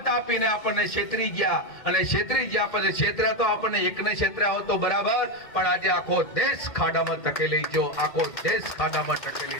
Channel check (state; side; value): late; right; 2.1 ms